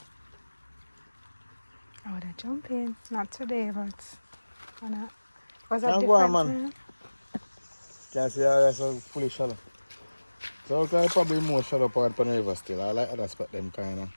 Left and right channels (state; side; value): inverted; both; correlation -1.00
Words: Oh, they're jumping. Not today, but why not? Was that Can't different? go on, man. Can't see how it's so fully shallow. So it's probably more shallow part on the river still. I like other spot them kind of.